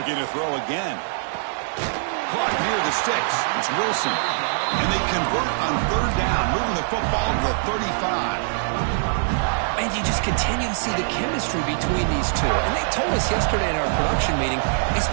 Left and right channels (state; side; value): silent; left; digital silence